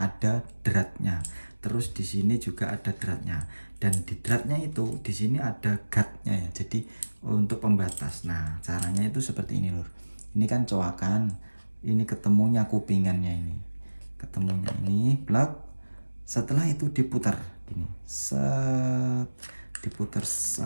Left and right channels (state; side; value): inverted; both; correlation -1.00